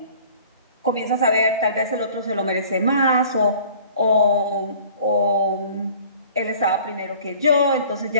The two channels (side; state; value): both; inverted; correlation -0.49